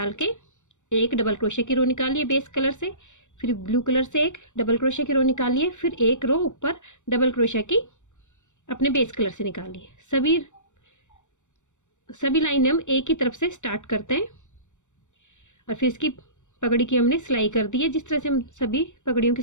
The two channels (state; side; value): late; right; 0.85 ms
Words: के एक डबल क्रोशे की रो निकाली है बेस कलर से, फिर ब्लू कलर से एक डबल क्रोशे की रो निकाली है, फिर एक रो ऊपर डबल क्रोशे की अपने बेस कलर से निकाली है। सभी लाइन हम एक ही तरफ से स्टार्ट करते हैं और फिर इसकी पगड़ी की हमने सिलाई कर दी है। जिस तरह से हम सभी पगड़ियों की